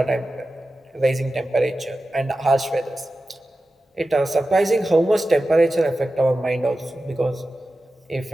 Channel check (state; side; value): normal; both; correlation 0.93